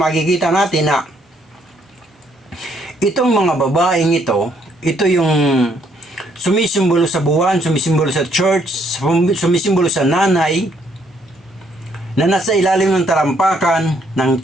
natin na itong mga babaeng ito yung sumisimbolo sa buwan, sumisimbolo sa church, sumisimbolo sa nanay na nasa ilalim ng talampakan ng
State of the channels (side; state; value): both; normal; correlation 0.69